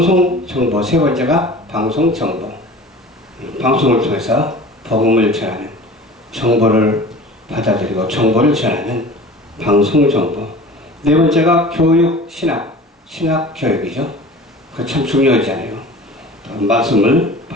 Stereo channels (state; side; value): normal; both; correlation 0.40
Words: 정보, 세 번째가 방송 정보. 방송을 통해서 복음을 전하는, 정보를 받아들이고 정보를 전하는 방송 정보. 네 번째가 교육, 신학 교육이죠. 그거 참 중요하잖아요. 또 말씀을